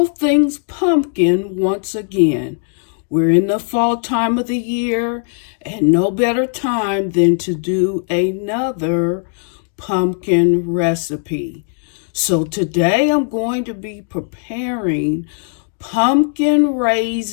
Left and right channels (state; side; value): silent; right; 68 dB below the other